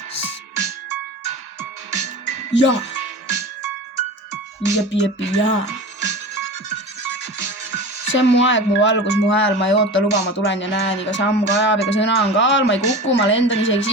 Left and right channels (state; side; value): normal; both; correlation 0.32